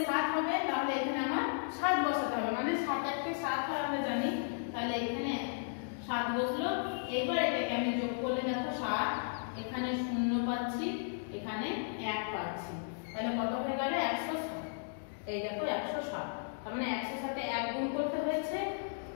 7 হবে, তাহলে এখানে আমার 7 বসাতে হবে, মানে 7 1 কে 7 হয় আমরা জানি, তাহলে এখানে 7 বসলো। এবার এটাকে আমি যোগ করলে দেখো 7, এখানে 0 পাচ্ছি, এখানে 1 পাচ্ছি, তাহলে কত হয়ে গেল 107। এই দেখো 107, তার মানে 100 এর সাথে 1 গুণ করতে হয়েছে,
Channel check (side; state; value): right; silent; digital silence